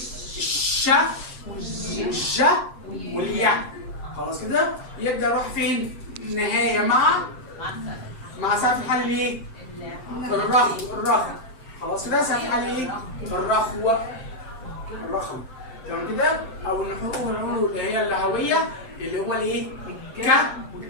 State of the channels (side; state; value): right; late; 7.7 ms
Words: والج والياء. خلاص كده؟ يبدا يروح فين؟ نهايه مع سقف الحلق الايه؟ الرخو. خلاص كده؟ سقف الحلق ايه؟ الرخو. تمام كده؟ او النحور اللي هي اللهويه اللي هو الايه؟ ك